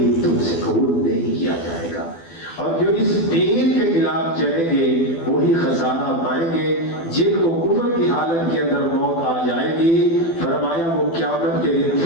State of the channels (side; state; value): right; late; 12 ms